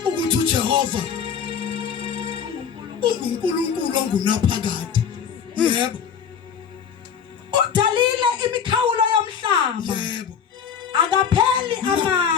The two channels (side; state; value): right; quieter; 7.3 dB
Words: ukuthi uJehova uNkulunkulu ongunaphakade. Yebo. udalile imikhawulo yomhlaba Yebo. akapheli